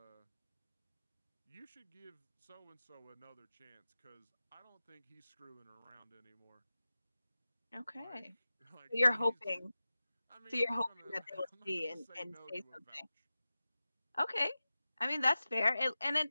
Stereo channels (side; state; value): both; inverted; correlation -0.94